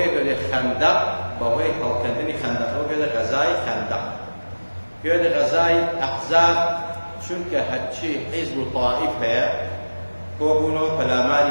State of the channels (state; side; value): inverted; both; correlation -1.00